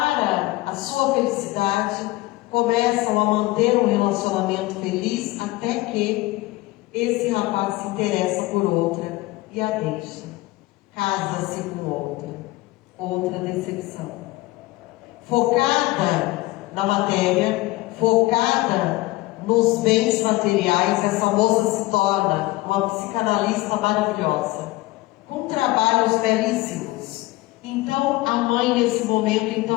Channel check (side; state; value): right; quieter; 19.8 dB